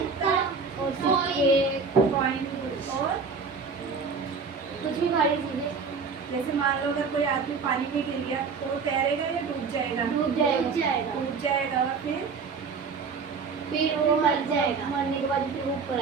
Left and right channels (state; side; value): quieter; left; 5.2 dB